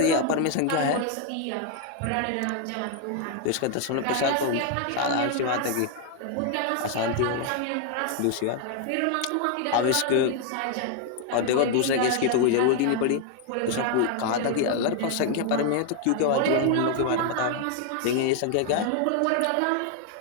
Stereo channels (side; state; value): both; different; correlation 0.00